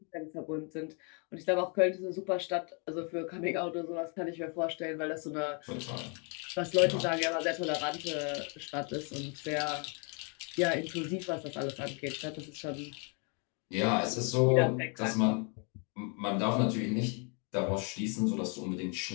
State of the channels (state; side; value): quieter; right; 36.4 dB